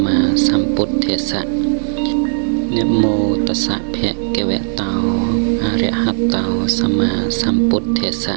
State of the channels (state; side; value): silent; left; digital silence